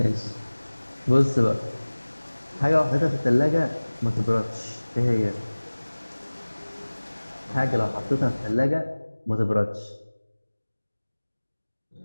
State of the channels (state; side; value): inverted; both; correlation -1.00